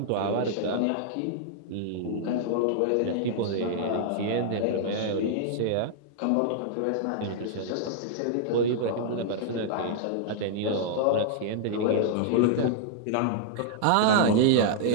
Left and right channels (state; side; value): different; both; correlation -0.01